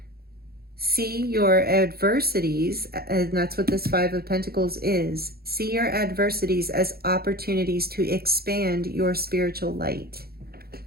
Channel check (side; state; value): left; late; 0.45 ms